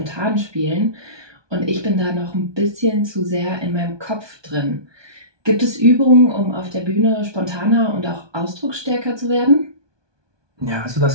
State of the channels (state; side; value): late; left; 1.2 ms